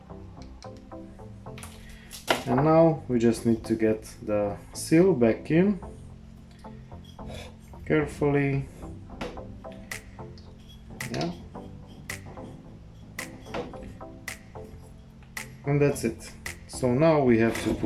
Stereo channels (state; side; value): identical; both; correlation 1.00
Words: and now we just need to get the seal back in carefully. Yeah, and that's it. So now we have to